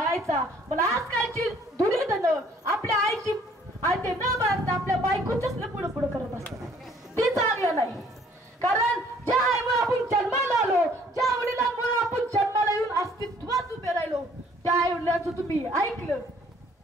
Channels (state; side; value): normal; both; correlation 0.59